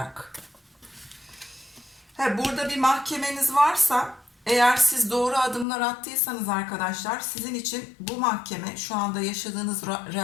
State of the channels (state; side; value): drops out; right; at 5.7 s